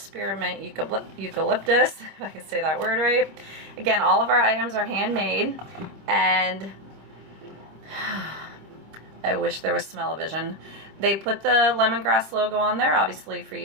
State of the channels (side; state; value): left; late; 25 ms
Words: eucalyptus, if I can say that word right. Again, all of our items are handmade, and I wish there was smell-o-vision. They put the lemongrass logo on there, obviously for you